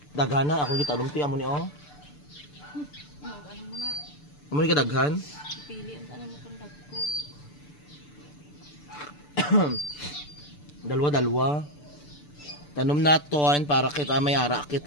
daghana ako gitanom ti amo ni oh. Amo ni kadaghan? Pili ang tanan mo kung Dalawa. Tanom naton para kita may ara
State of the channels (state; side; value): late; right; 6.8 ms